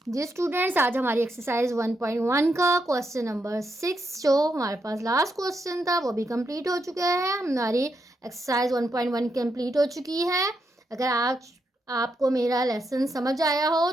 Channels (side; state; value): both; normal; correlation 0.82